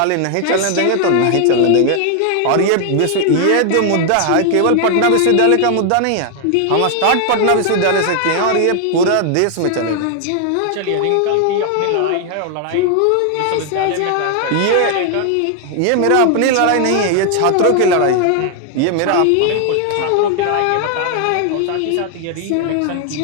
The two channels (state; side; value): different; both; correlation 0.00